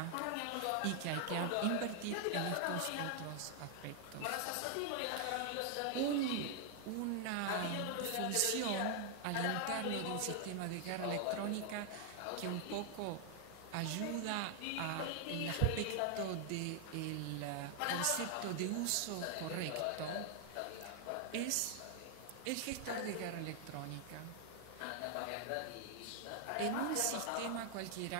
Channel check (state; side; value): different; both; correlation 0.00